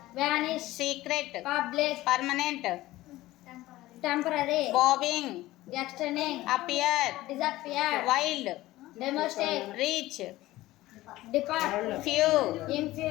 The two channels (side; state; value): right; quieter; 17.1 dB